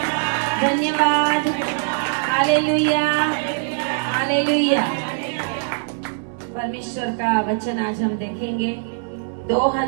धन्यवाद। Hallelujah, hallelujah. परमेश्वर का वचन आज हम देखेंगे।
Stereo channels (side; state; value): left; silent; digital silence